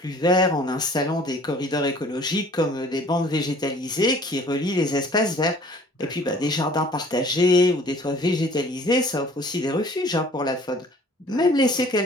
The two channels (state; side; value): normal; both; correlation 0.52